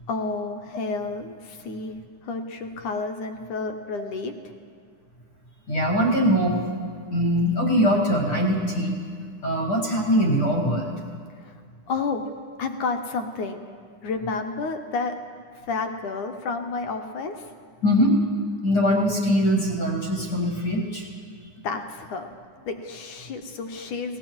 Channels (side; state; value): right; late; 9.9 ms